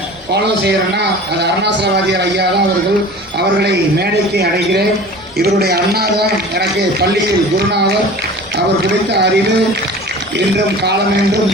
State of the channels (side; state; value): both; normal; correlation 0.40